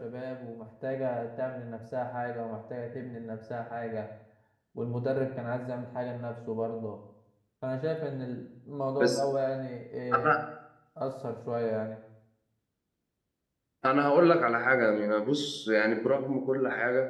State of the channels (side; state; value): both; identical; correlation 1.00